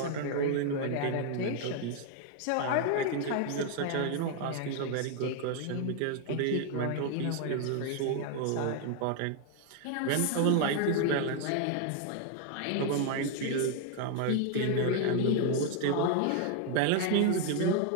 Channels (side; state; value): both; different; correlation 0.00